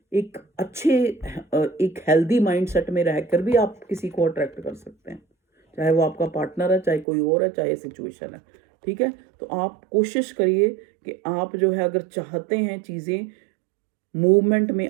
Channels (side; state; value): left; drops out; at 7.1 s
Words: एक अच्छे, एक हेल्दी माइंडसेट में रहकर भी आप किसी को अट्रैक्ट कर सकते हैं, चाहे वो आपका पार्टनर है, चाहे कोई और है, चाहे सिचुएशन है, ठीक है। तो आप कोशिश करिए कि आप जो है, अगर चाहते हैं चीज़ें मूवमेंट में